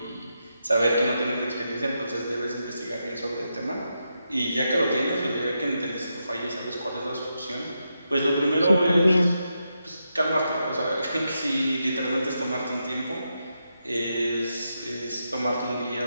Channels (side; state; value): both; inverted; correlation -0.85